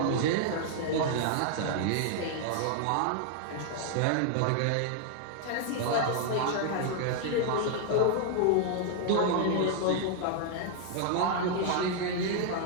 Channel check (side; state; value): both; different; correlation 0.00